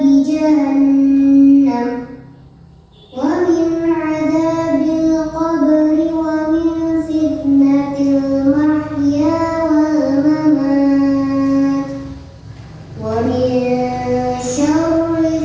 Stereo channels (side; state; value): both; identical; correlation 1.00